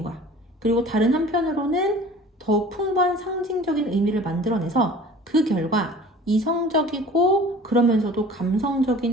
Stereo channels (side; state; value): both; normal; correlation 0.45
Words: 거야. 그리고 다른 한편으로는 더 풍부한 상징적인 의미를 만들어내서 그 결과 이성적이고 그러면서도